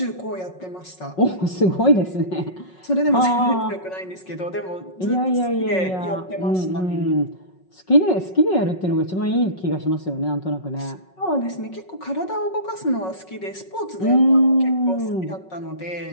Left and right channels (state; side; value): late; right; 5.4 ms